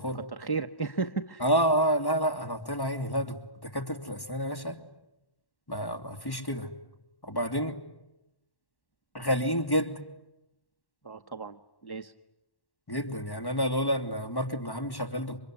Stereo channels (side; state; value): right; late; 1.1 ms